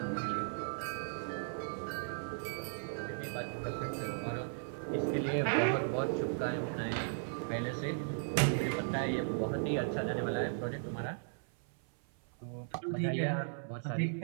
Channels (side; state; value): left; silent; 53 dB below the other